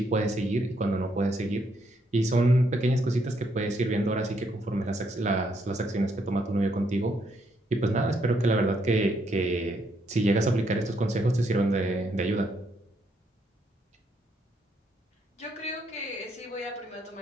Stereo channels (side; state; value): both; normal; correlation 0.74